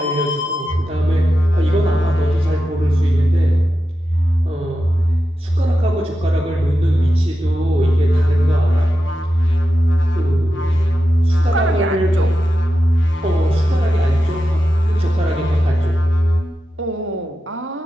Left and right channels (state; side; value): normal; both; correlation 0.90